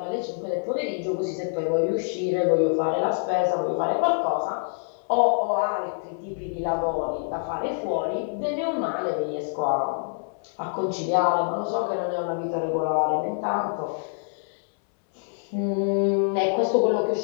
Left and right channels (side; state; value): right; silent; 61 dB below the other